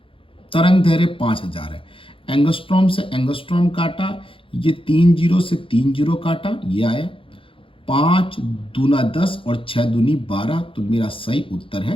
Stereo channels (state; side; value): late; right; 0.26 ms